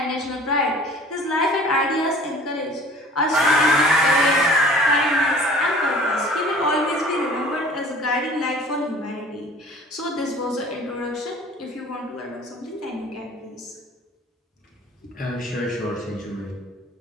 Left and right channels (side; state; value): both; normal; correlation 0.47